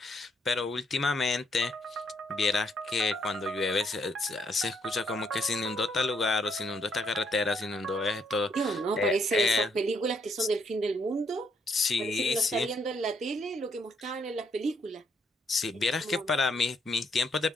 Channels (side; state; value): both; normal; correlation 0.73